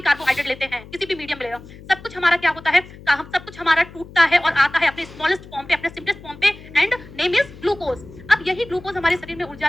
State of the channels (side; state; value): left; noise; hum, 18 dB below the sound